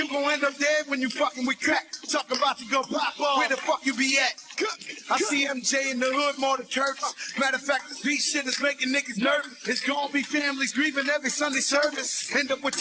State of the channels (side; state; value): both; identical; correlation 1.00